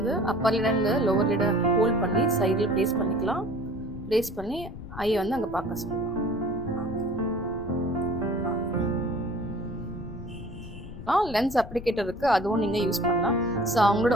அப்பர் லிடருந்து லோவர் லிட ஹோல்ட் பண்ணி சைடில் ப்ளேஸ் பண்ணிக்கலாம். ப்ளேஸ் பண்ணி ஐயை வந்து அங்கே பார்க்க சொல்லலாம். லென்ஸ் அப்ளிகேட்டர் இருக்குது, அதுவும் நீங்கள் யூஸ் பண்ணலாம். ஸோ அவங்களோட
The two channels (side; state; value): left; noise; rumble, 12 dB below the sound